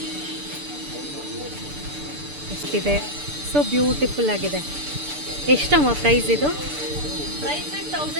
ಎಷ್ಟಿದೆ, ಸೊ ಬ್ಯೂಟಿಫುಲ್ ಆಗಿದೆ. ಎಷ್ಟಮ್ಮ ಪ್ರೈಸ್ ಇದು? ಪ್ರೈಸ್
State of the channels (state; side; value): late; left; 6.8 ms